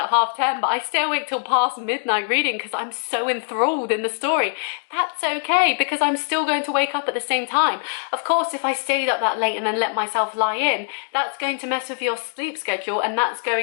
10:30, but I stay awake till past midnight reading because I'm so enthralled in the story. That's okay, because I'm still going to wake up at the same time. Of course, if I stayed up that late and then let myself lie in, that's going to mess with your sleep schedule and that's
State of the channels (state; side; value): silent; right; digital silence